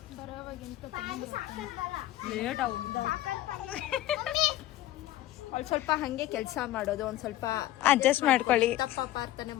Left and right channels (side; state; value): right; quieter; 14.9 dB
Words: ಸ್ವಲ್ಪ ಹಂಗೆ ಕೆಲಸ ಮಾಡೋದು, ಒಂದ್ ಸ್ವಲ್ಪ ಅಡ್ಜಸ್ಟ್ ಮಾಡ್ಕೊಳ್ಳಿ. ತಪ್ಪ ಪ್ರಾರ್ಥನೆ